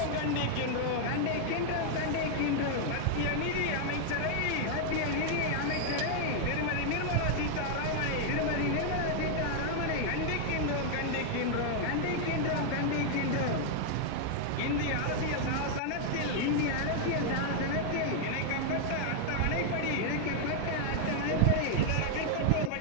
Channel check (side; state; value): both; different; correlation 0.00